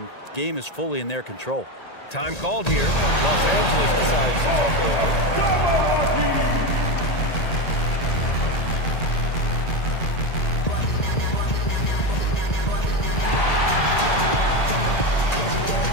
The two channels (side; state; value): right; late; 1.8 ms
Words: game is fully in their control. Time called here. Los Angeles decides to talk it over.